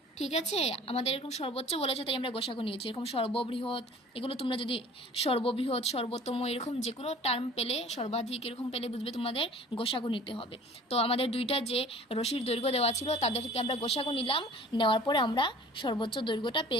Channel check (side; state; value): both; normal; correlation 0.47